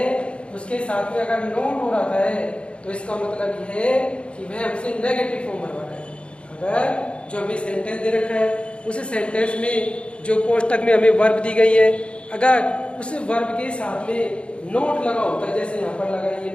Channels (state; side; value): late; right; 0.058 ms